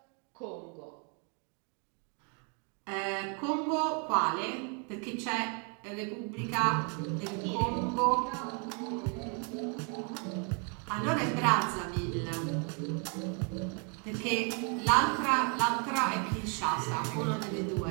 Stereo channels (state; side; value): quieter; left; 37.5 dB